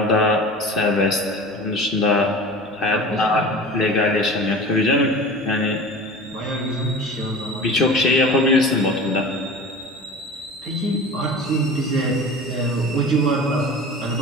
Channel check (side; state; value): both; normal; correlation 0.36